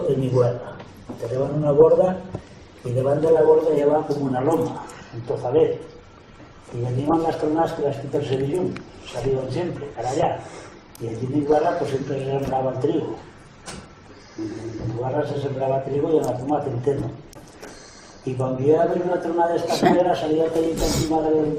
en Iguala, tenían una borda y debajo de la borda llevaba como una loma, un tozalet, y allí iban las tronadas que las quitas de Sevillón, salían siempre, para allá, y allí en Iguala pues siempre se sembraba el trigo. En Iguala se sembraba trigo y en la zona centeno. Y cuando iba a ver una tronada de esta manera salía cayendo encima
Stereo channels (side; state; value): both; identical; correlation 1.00